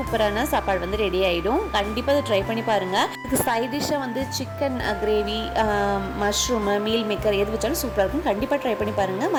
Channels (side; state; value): both; identical; correlation 1.00